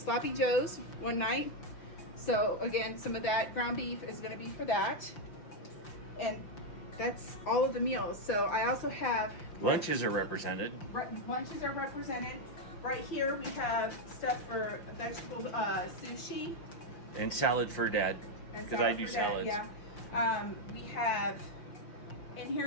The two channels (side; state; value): right; late; 5.7 ms